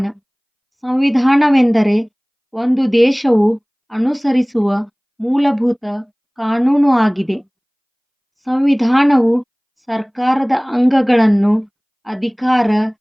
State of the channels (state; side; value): identical; both; correlation 1.00